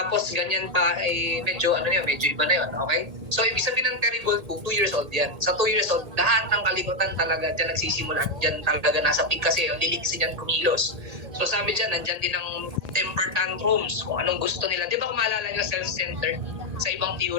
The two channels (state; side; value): late; left; 1.8 ms